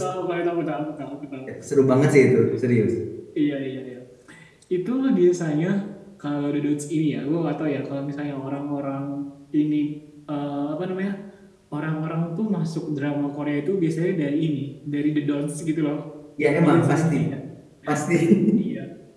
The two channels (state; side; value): identical; both; correlation 1.00